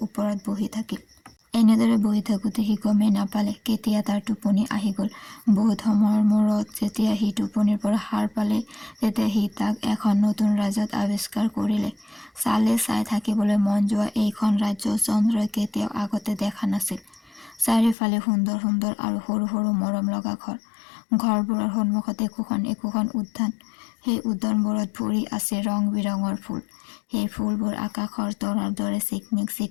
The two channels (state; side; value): drops out; right; at 17.9 s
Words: ওপৰত বহি থাকিল। এনেদৰে বহি থাকোতে সি গমেই নাপালে কেতিয়া তাৰ টোপনি আহি গল। বহুত সময়ৰ মূৰত যেতিয়া সি টোপনিৰ পৰা সাৰ পালে তেতিয়া সি তাক এখন নতুন ৰাজ্যত আৱিষ্কাৰ কৰিলে। চাই থাকিবলৈ মন যোৱা এইখন ৰাজ্য চন্দ্ৰই কেতিয়াও আগতে দেখা নাছিল। চাৰিওফালে সুন্দৰ সুন্দৰ আৰু সৰু সৰু মৰম লগা ঘৰ। ঘৰবোৰৰ সন্মুখত একোখন উদ্যান। সেই উদ্যানবোৰত ভৰি আছে ৰং বিৰঙৰ ফুল। সেই ফুলবোৰ আকাশৰ তৰাৰ দৰে